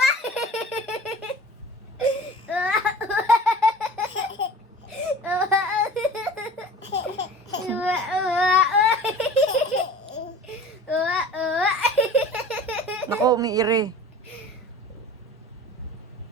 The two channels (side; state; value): both; normal; correlation 0.40